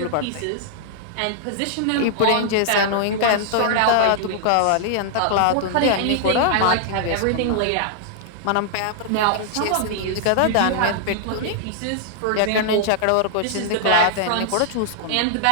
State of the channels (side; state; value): both; different; correlation -0.01